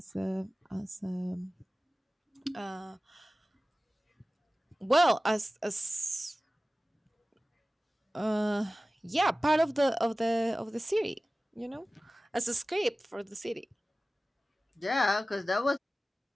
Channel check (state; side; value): normal; both; correlation 0.97